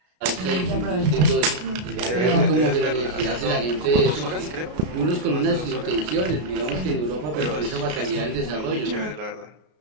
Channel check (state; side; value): late; left; 33 ms